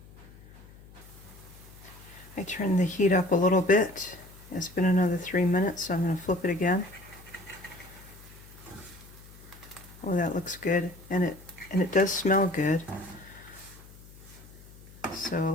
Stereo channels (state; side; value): noise; left; hum, 20 dB below the sound